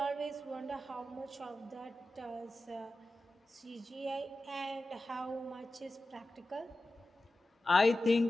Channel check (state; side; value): normal; both; correlation 0.93